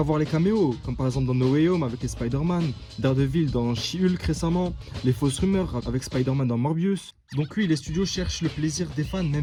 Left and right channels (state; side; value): identical; both; correlation 1.00